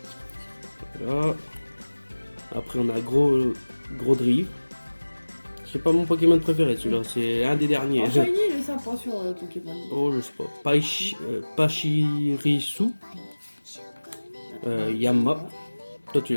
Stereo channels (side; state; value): both; inverted; correlation -1.00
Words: Voilà. Après, on a gros drive. C'est pas mon Pokémon préféré, celui-là. C'est un des derniers. Oh, Shiny, il est sympa sur Pokémon. Oh, je sais pas. Pachirisu. Yamma. Toi, tu